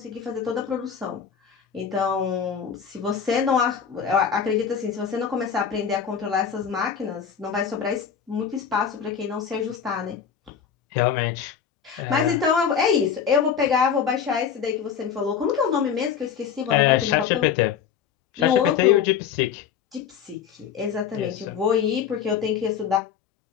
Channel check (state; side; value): quieter; right; 7.6 dB